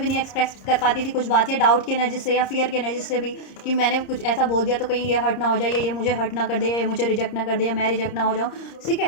नहीं एक्सप्रेस कर पाती थी कुछ बात, या डाउट की एनर्जी से, या फियर की एनर्जी से भी, कि मैंने कुछ ऐसा बोल दिया तो कहीं ये हर्ट ना हो जाए, या ये मुझे हर्ट ना कर दे, या ये मुझे रिजेक्ट ना कर दे, या मैं रिजेक्ट ना हो जाऊँ, ठीक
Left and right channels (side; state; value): right; late; 30 ms